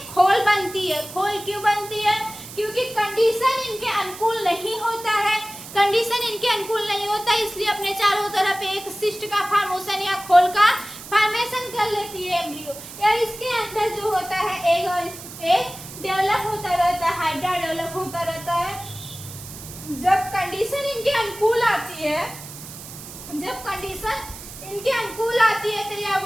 खोल बनती है। खोल क्यों बनती है, क्योंकि कंडीशन इनके अनुकूल नहीं होता है। कंडीशन इनके अनुकूल नहीं होता इसलिए अपने चारों तरफ एक सिस्ट का फॉर्मेशन या खोल का फॉर्मेशन कर लेती है एम्ब्रियो। या इसके अंदर जो होता है एग डेवलप होता रहता है, हाइड्रा डेवलप होता रहता है। जब कंडीशन इनके अनुकूल आती है, जब कंडीशन इनके अनुकूल आती है तो यह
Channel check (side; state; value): right; noise; hiss, 14 dB below the sound